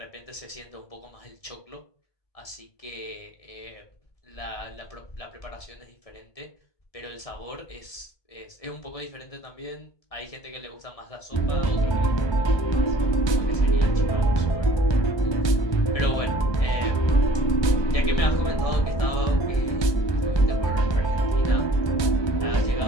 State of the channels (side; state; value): right; late; 1.7 ms